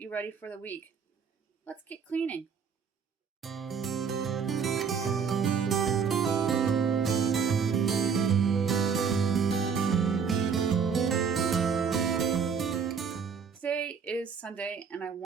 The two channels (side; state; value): left; quieter; 6.4 dB